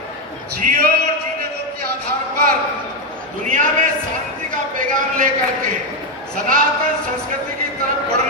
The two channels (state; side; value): normal; both; correlation 0.05